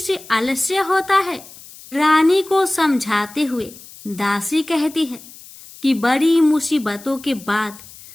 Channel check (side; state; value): left; noise; hiss, 19 dB below the sound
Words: आलस्य होता है। रानी को समझाते हुए दासी कहती है कि बड़ी मुसीबतों के बाद